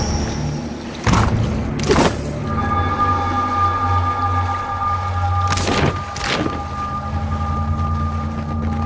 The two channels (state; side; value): identical; both; correlation 1.00